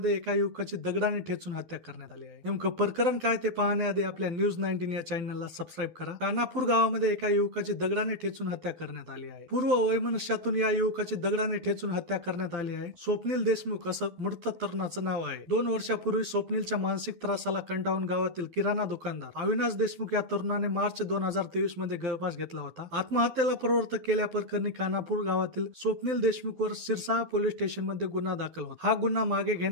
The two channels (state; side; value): late; left; 12 ms